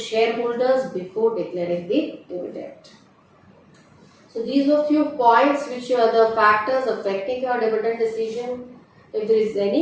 share holders before declaring the dividend. So these were few points which are the factors affecting your dividend decision. If there is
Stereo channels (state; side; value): identical; both; correlation 1.00